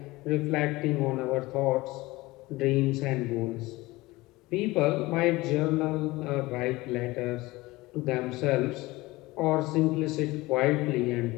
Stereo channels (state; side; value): quieter; right; 20.4 dB